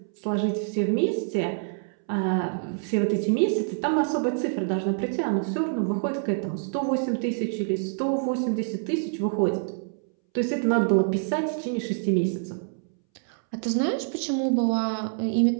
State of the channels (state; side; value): silent; left; 61 dB below the other